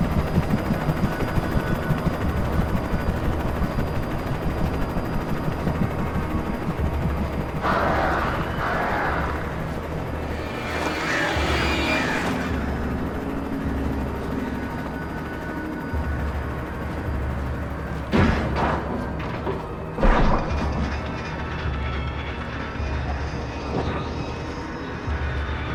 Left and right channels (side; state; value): both; identical; correlation 1.00